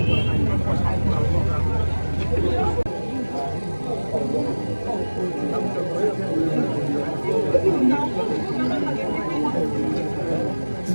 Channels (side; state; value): both; inverted; correlation -1.00